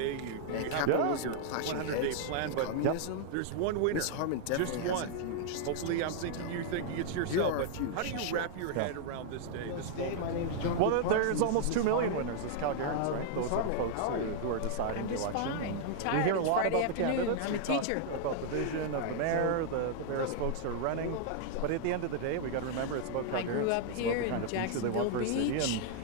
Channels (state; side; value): different; both; correlation 0.00